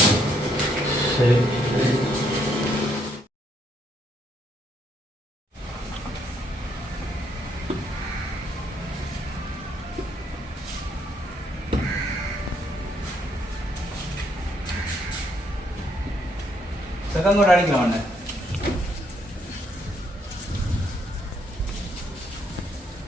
சரி சரி. செகண்ட் கூட அடிக்கலாம் ஒன்று.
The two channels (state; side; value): normal; both; correlation 0.72